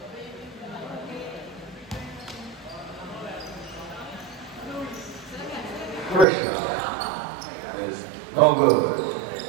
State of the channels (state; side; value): drops out; left; at 6.2 s